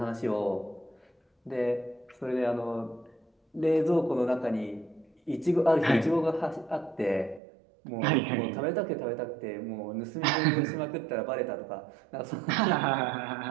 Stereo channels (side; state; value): left; drops out; at 7.4 s